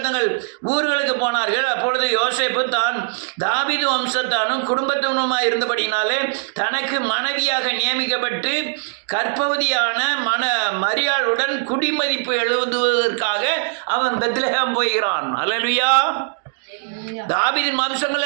ஊர்களுக்கு போனார்கள். அப்பொழுது யோசேப்பு தான் தாவீது வம்சத்தானும் குடும்பத்தினுமாய் இருந்தபடினாலே தனக்கு மனைவியாக நியமிக்கப்பட்டு கர்ப்பவதியான மரியாளுடன் குடிமதிப்பு எழுதுவதற்காக அவன் பெத்லெகேம் போகிறான். அல்லேலூயா. தாவீதின்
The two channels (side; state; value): left; silent; digital silence